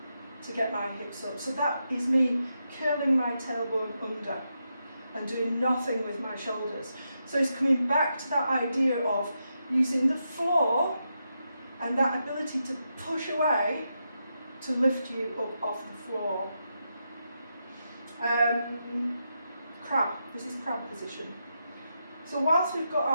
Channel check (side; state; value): both; inverted; correlation -0.85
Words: to get my hips up. So that is me curling my tailbone under and doing nothing with my shoulders. So it's coming back to that idea of using the floor and that ability to push away to lift you up off the floor. Crab. This is crab position. So whilst we've got